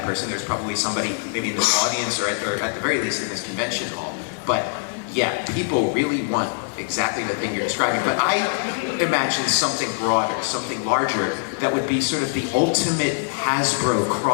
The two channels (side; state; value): right; silent; digital silence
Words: person. There's probably somebody maybe in this audience or at the very least in this convention hall. But yeah, people really want exactly the thing you're describing. But I imagine something broader, something larger, that would be sort of the ultimate Hasbro